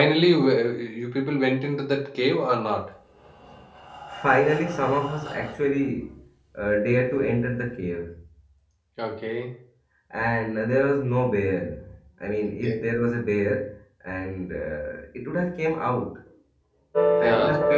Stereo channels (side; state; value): both; identical; correlation 1.00